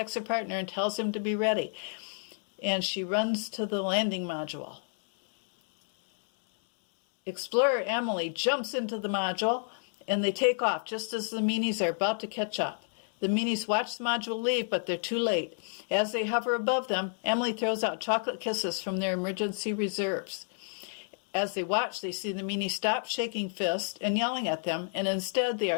her partner and tells him to be ready. And she runs to the landing module. Explorer Emily jumps into the module, and they take off just as the meanies are about to catch up. The meanies watch the module leave, but they're too late. As they hover above them, Emily throws out chocolate kisses from their emergency reserves. As they watch, they see the meanies stop shaking fists and yelling at them, and instead they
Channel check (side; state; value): right; silent; 57 dB below the other